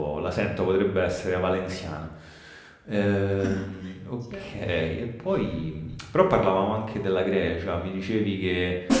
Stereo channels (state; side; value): identical; both; correlation 1.00